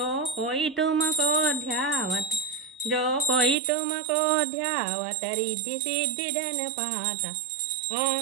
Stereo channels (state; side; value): drops out; left; at 3.6 s